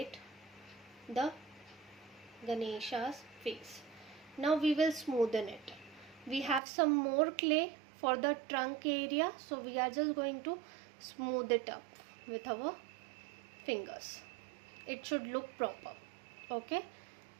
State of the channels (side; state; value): left; drops out; at 6.6 s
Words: the Ganesha's face. Now we will smoothen it. We have some more clay for the trunk area, so we are just going to smooth it up with our fingers. It should look proper. Okay,